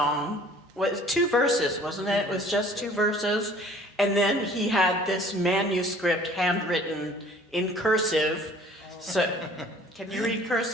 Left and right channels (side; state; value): both; normal; correlation 0.52